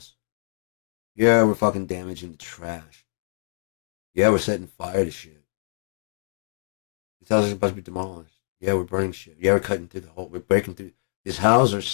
Yeah, we're fucking damaging the trash. Yeah, we're setting fire to shit. These houses are supposed to be demolished. Yeah, we're burning shit. Yeah, we're cutting through the hole. We're breaking through. These houses are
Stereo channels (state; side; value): silent; right; 62 dB below the other